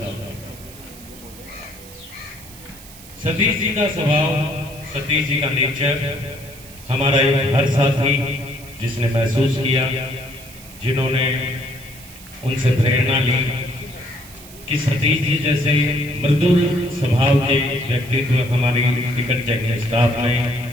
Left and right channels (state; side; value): noise; right; hiss, 19 dB below the sound